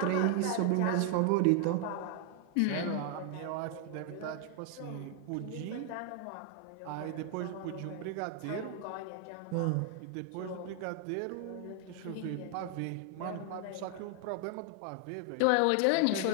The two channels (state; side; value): different; both; correlation 0.00